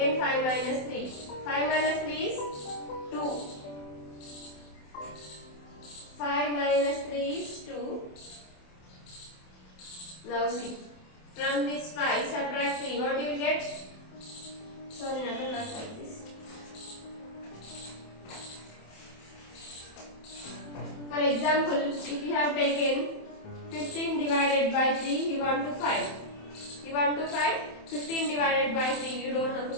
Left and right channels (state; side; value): late; right; 27 ms